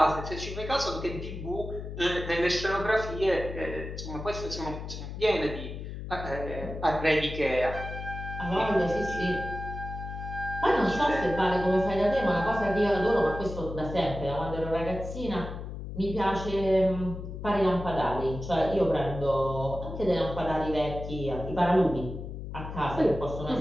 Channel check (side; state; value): left; noise; hum, 8 dB below the sound